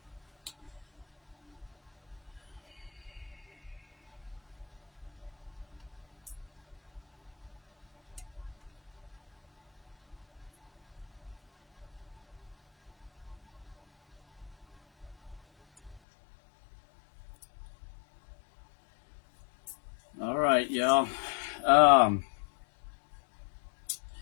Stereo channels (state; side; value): drops out; right; at 16.0 s